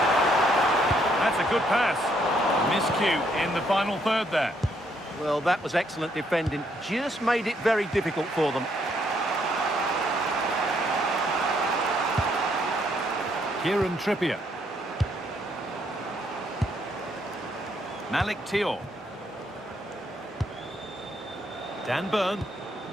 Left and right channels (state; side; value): normal; both; correlation 0.71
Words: That's a good pass. Miscue in the final third there. Well, that was excellent defending. Just made it very difficult for them. Kieran Trippier. Malik Thiaw. Dan Burn.